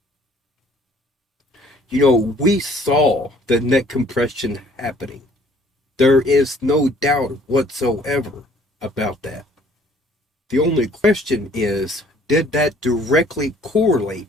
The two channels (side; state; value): both; normal; correlation 0.58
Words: You know, we saw the neck compression happening. There is no doubt whatsoever about that. The only question is, did that directly